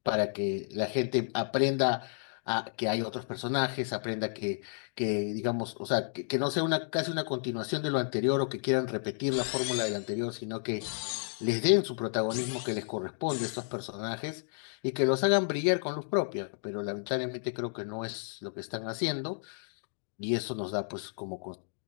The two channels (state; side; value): silent; right; digital silence